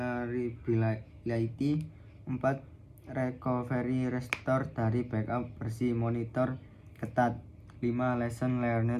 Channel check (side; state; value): both; identical; correlation 1.00